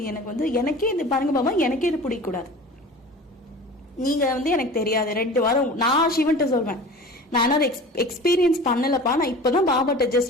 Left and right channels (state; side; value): normal; both; correlation 0.38